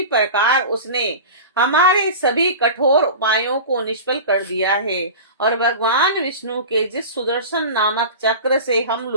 प्रकार उसने हमारे सभी कठोर उपायों को निष्फल कर दिया है और भगवान विष्णु के जिस सुदर्शन नामक चक्र से हम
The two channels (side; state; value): both; inverted; correlation -0.32